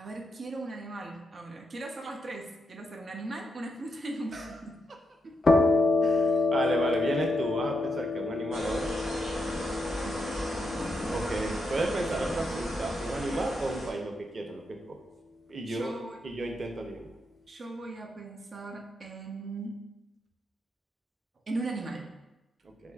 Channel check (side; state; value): both; normal; correlation 0.83